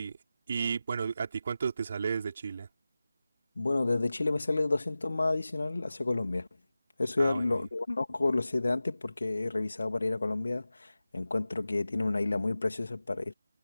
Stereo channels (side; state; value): both; inverted; correlation -0.95